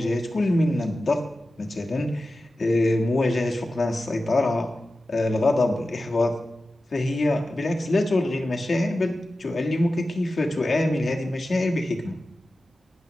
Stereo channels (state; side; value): normal; both; correlation 0.94